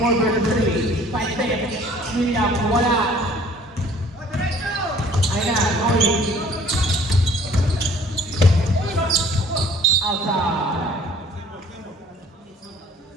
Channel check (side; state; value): both; normal; correlation 0.54